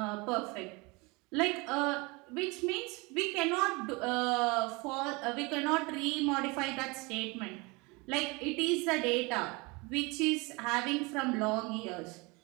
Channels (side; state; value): left; quieter; 26.5 dB